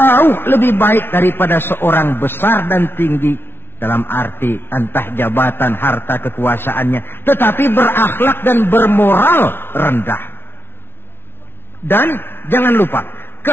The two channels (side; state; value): right; late; 0.11 ms